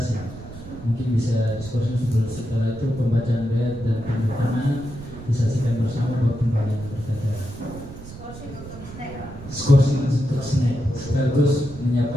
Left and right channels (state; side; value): noise; right; rumble, 14 dB below the sound